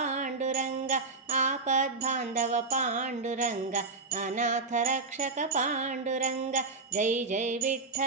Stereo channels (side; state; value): left; quieter; 3.9 dB